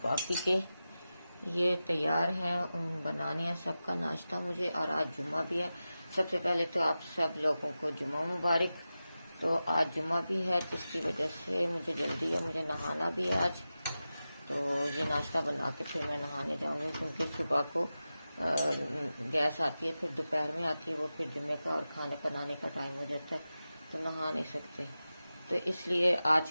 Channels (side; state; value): both; inverted; correlation -0.94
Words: बाकी के ये तैयार है, बनाने हैं सबका नाश्ता मुझे। और आज जुम्मा भी है। सबसे पहले तो आप सब लोगों को जुम्मा मुबारक। तो आज जुम्मा भी है, जिसकी वजह से मुझे जल्दी है, मुझे नहाना भी है आज। तो ये नाश्ता बना के फिर मैं नहाने जाऊंगी, क्योंकि सुबह को गैस आती है, फिर दोपहर में आती है, वो फिर जुम्मे का और खाने बनाने का टाइम हो जाता है, तो नहा नहीं सकते। तो इसलिए आज